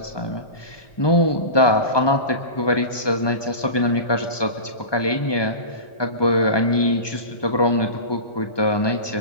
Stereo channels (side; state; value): right; late; 1.2 ms